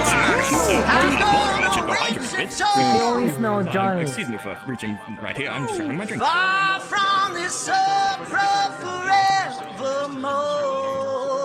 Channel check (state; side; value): identical; both; correlation 1.00